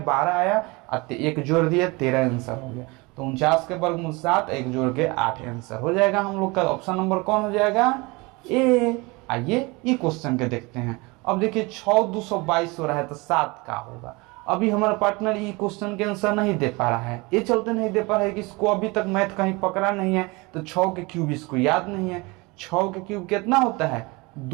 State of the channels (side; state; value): left; quieter; 25.5 dB